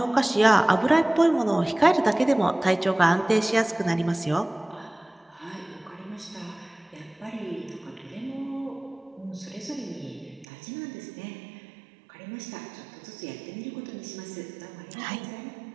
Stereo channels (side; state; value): left; drops out; at 10.5 s